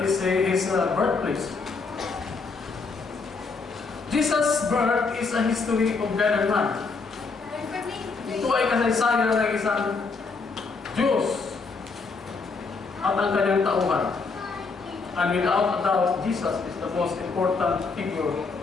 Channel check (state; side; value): quieter; right; 4.4 dB